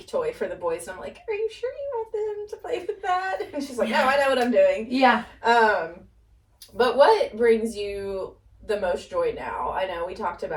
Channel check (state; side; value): identical; both; correlation 1.00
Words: toy for the boys, and I'm like, are you sure you want them to play with that? And she's like, no, I know what I'm doing. Yeah. But what brings you the most joy now? I know we talked